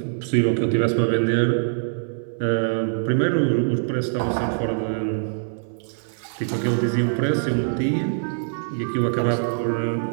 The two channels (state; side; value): silent; left; 62 dB below the other